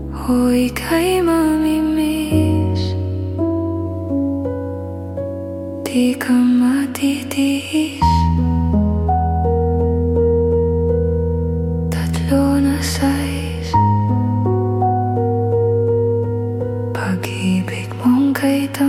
O ika'y mamimiss, di ka matitiis. Tatlo na size, pag-ibig mong kay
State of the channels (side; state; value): both; identical; correlation 1.00